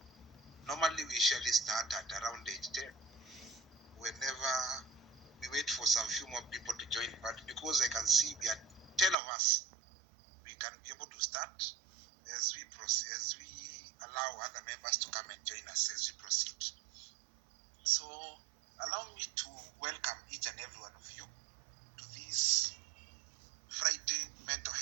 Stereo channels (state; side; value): drops out; left; at 9.2 s